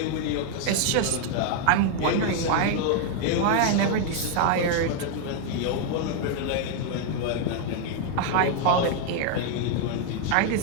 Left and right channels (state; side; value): different; both; correlation 0.00